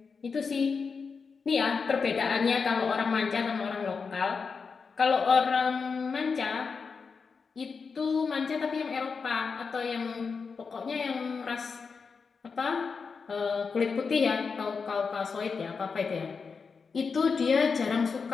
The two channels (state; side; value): quieter; right; 5.2 dB